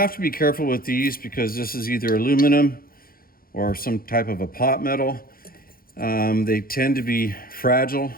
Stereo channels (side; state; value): right; late; 0.42 ms